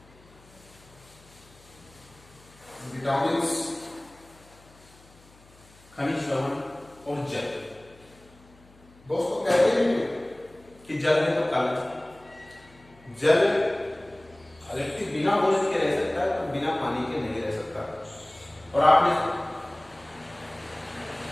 विटामिन्स, खनिज लवण और जल। दोस्तों कहते हैं कि जल है तो कल। जल व्यक्ति बिना भोजन के रह सकता है तो बिना पानी के नहीं रह सकता। और आपने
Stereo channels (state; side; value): noise; left; hum, 26 dB below the sound